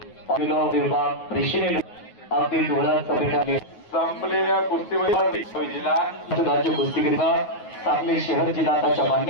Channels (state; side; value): late; right; 9.4 ms